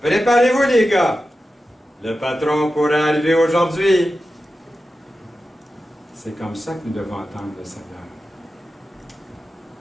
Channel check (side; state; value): both; normal; correlation 0.92